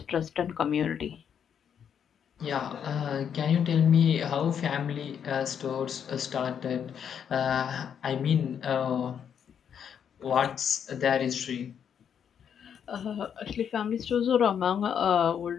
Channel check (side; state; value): right; quieter; 8.1 dB